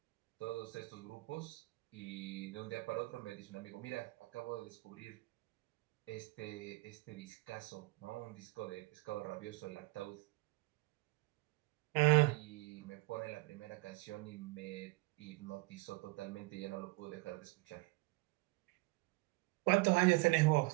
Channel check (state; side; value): quieter; left; 24.1 dB